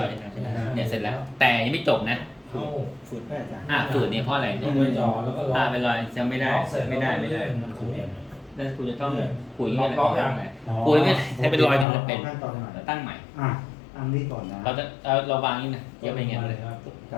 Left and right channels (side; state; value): right; drops out; at 11.9 s